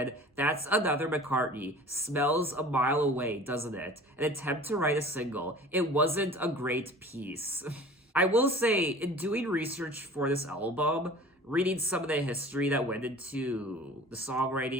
"That's another McCartney. Smells a mile away, doesn't it? An attempt to write a single. It wasn't a great piece." I will say, in doing research for this album, reading some of the history that went into the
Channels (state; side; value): normal; both; correlation 0.43